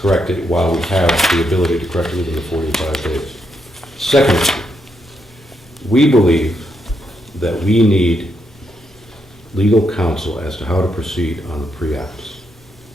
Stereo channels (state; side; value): normal; both; correlation 0.80